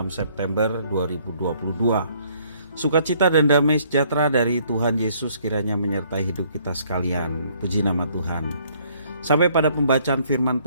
September 2022. Sukacita dan damai sejahtera dari Tuhan Yesus kiranya menyertai hidup kita sekalian. Puji nama Tuhan. Sampai pada pembacaan firman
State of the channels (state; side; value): inverted; both; correlation -0.64